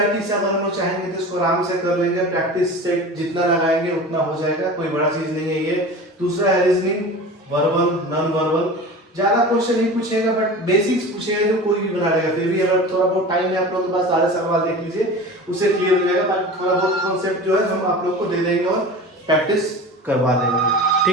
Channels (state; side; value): normal; both; correlation 0.34